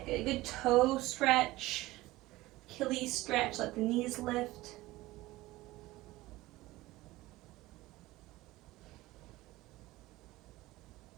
get a good toe stretch, Achilles stretch, let the knees lift.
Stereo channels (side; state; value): left; quieter; 18.5 dB